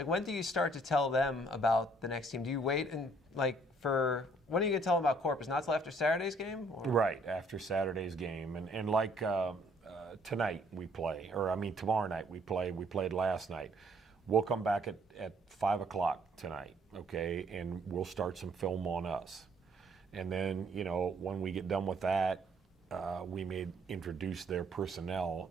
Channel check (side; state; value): both; normal; correlation 0.63